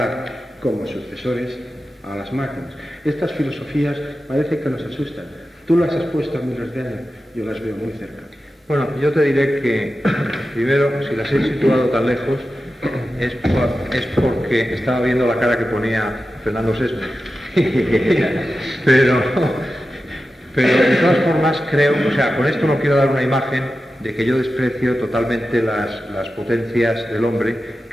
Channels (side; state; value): both; normal; correlation 0.92